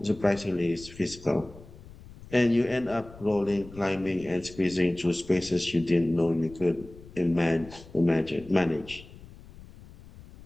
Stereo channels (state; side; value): noise; left; rumble, 19 dB below the sound